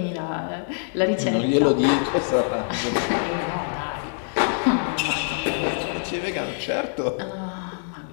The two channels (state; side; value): silent; right; digital silence